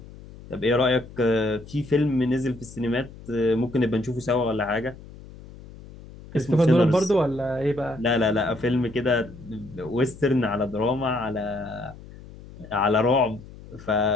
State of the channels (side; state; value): left; noise; hum, 18 dB below the sound